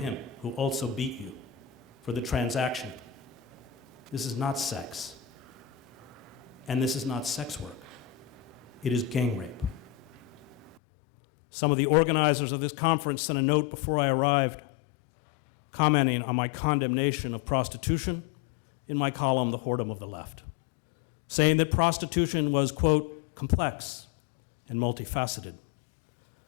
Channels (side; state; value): right; drops out; at 10.8 s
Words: who also beat you, for the transaction. This is not sex. And this is not sex work. It is gang rape. Some of the organizers of this conference sent a note before I arrived commenting on my condemnation of prostitution in my column, The Whoredom of the Left, saying that prostitution was, quote, complex and multifaceted.